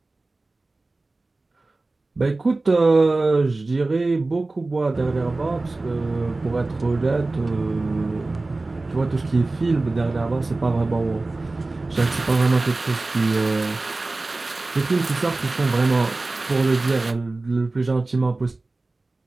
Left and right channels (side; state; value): left; quieter; 3.2 dB